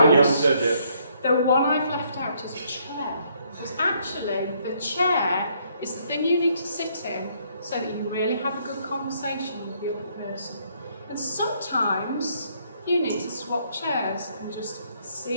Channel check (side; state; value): both; inverted; correlation -0.69